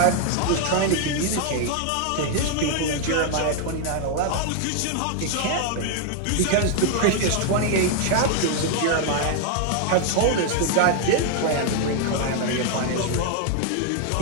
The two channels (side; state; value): both; different; correlation 0.00